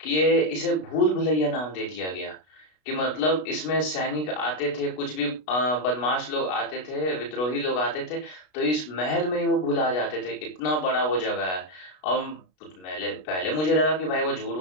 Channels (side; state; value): right; late; 33 ms